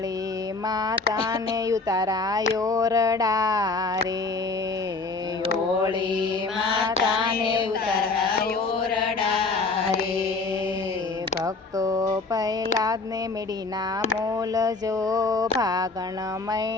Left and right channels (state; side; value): quieter; right; 3.8 dB